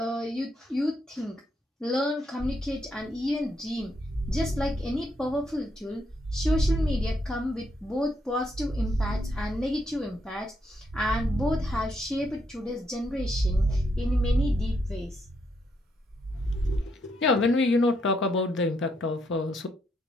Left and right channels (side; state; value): both; normal; correlation 0.77